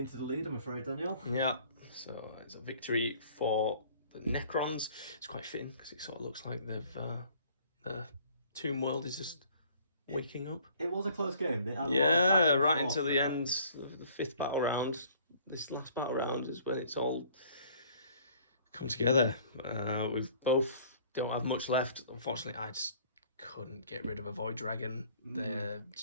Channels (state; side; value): inverted; both; correlation -0.55